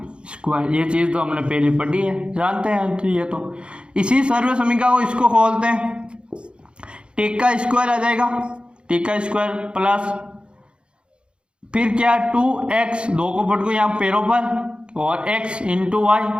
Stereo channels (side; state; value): left; late; 0.055 ms